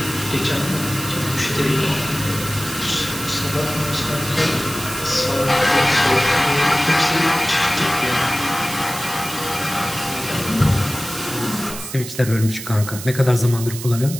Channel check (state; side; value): noise; right; hiss, 10 dB below the sound